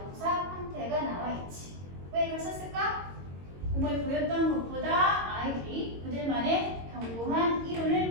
형태가 나와 있지. 왜 이걸 썼을까? 공부에 보였던 것보다 아이들이 그들만의 견고한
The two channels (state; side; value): late; left; 22 ms